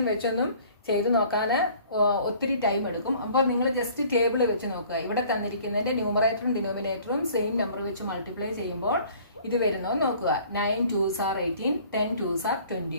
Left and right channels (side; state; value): both; inverted; correlation -0.52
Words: വെച്ചൊന്നും ചെയ്ത് നോക്കാൻ ഒത്തിരി ടൈം എടുക്കും. അപ്പോൾ നിങ്ങൾ ജസ്റ്റ് ടേബിൾ വെച്ച് നോക്കുക. ഇവിടെ തന്നിരിക്കുന്നതിന്റെ ന്യൂമറേറ്ററും ഡിനോമിനേറ്ററും സെയിം നമ്പർ വെച്ച് മൾട്ടിപ്ലൈ ചെയ്യുമ്പോൾ ഇത് വരുന്നത് നോക്കുക. 9 2s are 18, 10 2s are 20.